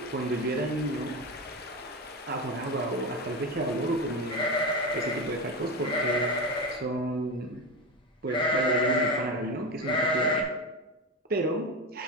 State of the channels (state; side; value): normal; both; correlation 0.19